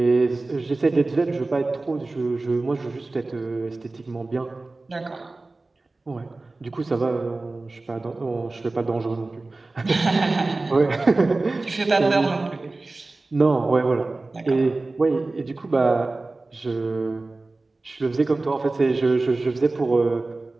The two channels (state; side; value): quieter; left; 3.3 dB